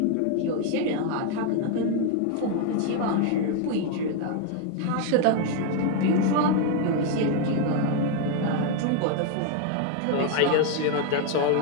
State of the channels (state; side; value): different; both; correlation 0.01